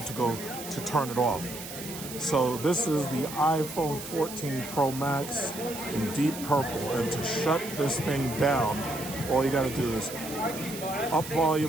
to turn it off. So this is the iPhone 14 Pro Max in deep purple. And to shut this thing down, all you gotta do is up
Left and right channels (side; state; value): right; noise; hiss, 11 dB below the sound